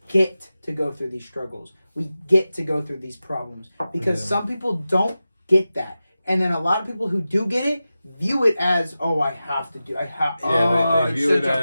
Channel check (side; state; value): both; inverted; correlation -0.94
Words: get to go through these struggles. We get to go through these problems because some people don't get that. And then a lot of people who do get it view it as, oh, I have to do. I have. Yeah, they view it